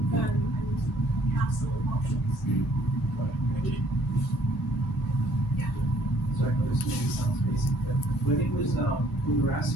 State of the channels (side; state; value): both; normal; correlation 0.61